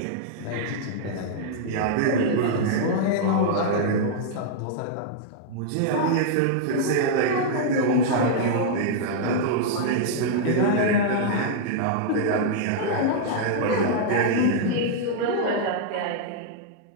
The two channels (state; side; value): different; both; correlation -0.01